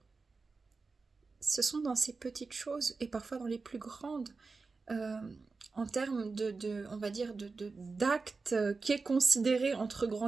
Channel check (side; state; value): left; quieter; 4.2 dB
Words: ce sont dans ces petites choses et parfois dans les plus grandes, euh, en termes on va dire, d'actes qui est considéré entre